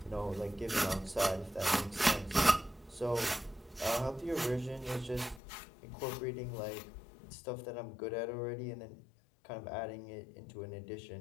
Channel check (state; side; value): drops out; right; at 5.4 s